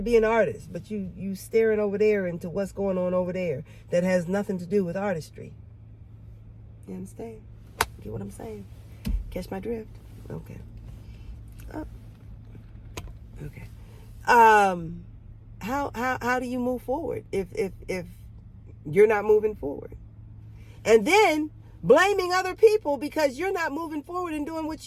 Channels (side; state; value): both; identical; correlation 1.00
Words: be an artist, but you staring over there into what's going on over there that has nothing to do with artistry. You understand? Get what I'm saying? Catch my drift? Okay. Oh. Okay. How do you move forward if you're not moving forward? And then blaming other people because you're not moving forward and doing what